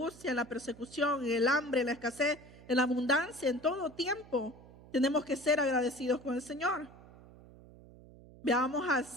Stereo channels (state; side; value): noise; right; hum, 21 dB below the sound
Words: en la persecución, en el hambre, en la escasez, en la abundancia, en todo tiempo, tenemos que ser agradecidos con el Señor. Veamos a